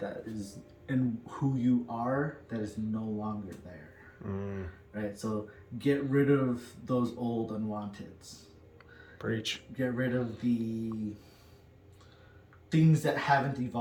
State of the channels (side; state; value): both; identical; correlation 1.00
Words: is, and who you are, that is no longer there. Right? So get rid of those old unwanteds. Preach. Get rid of the things that haven't